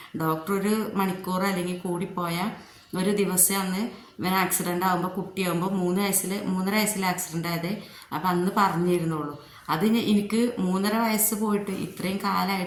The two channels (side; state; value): both; identical; correlation 1.00